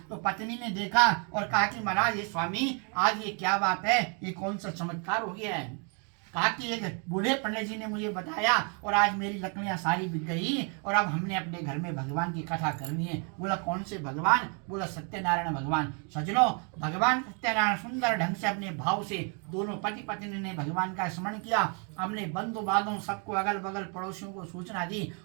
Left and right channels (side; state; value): left; quieter; 37.6 dB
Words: तो पत्नी ने देखा और कहा कि महाराज ये स्वामी, आज ये क्या बात है, ये कौन सा चमत्कार हो गया है। कहा कि एक बूढ़े पंडित जी ने मुझे बताया और आज मेरी लकड़ियां सारी बिक गई और अब हमने अपने घर में भगवान की कथा करनी है। बोला कौन से भगवान? बोला सत्यनारायण भगवान। सजनो, भगवान सत्यनारायण सुंदर ढंग से अपने भाव से दोनों पति पत्नी ने भगवान का स्मरण किया, अपने बंधु बांधों सबको, अगल बगल पड़ोसियों को सूचना दी